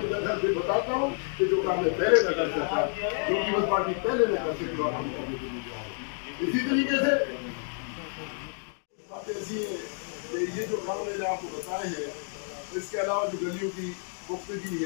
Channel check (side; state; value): right; silent; 55 dB below the other